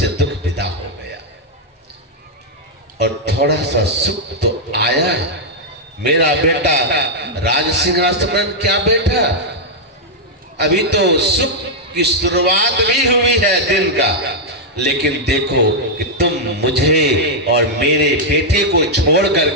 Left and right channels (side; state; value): both; normal; correlation -0.03